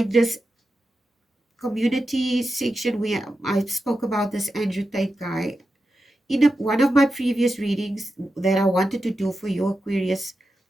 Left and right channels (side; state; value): both; normal; correlation 0.90